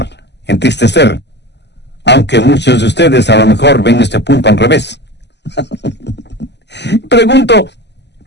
entristecer. Aunque muchos de ustedes a lo mejor ven este punto al revés. Pregunto,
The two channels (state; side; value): late; right; 0.50 ms